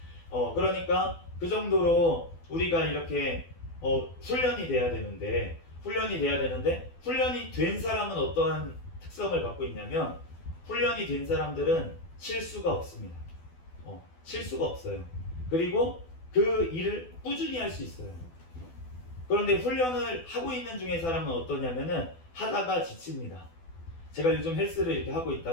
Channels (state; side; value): late; right; 12 ms